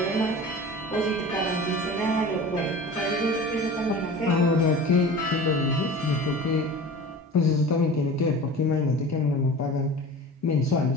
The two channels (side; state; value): both; normal; correlation 0.37